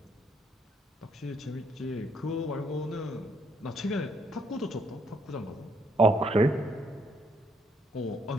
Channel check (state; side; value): normal; both; correlation 0.71